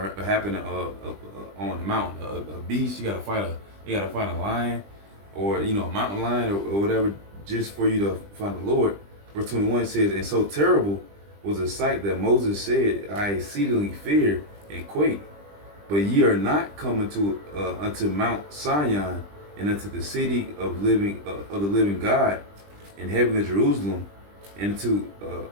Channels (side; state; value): left; late; 20 ms